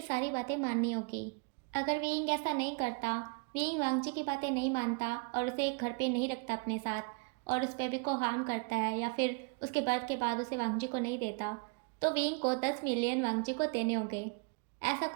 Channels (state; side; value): quieter; left; 33.0 dB